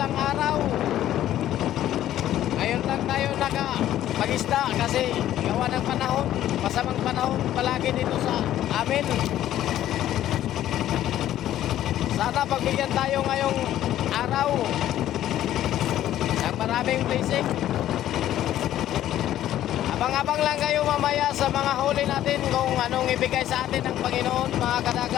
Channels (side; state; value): right; quieter; 12.5 dB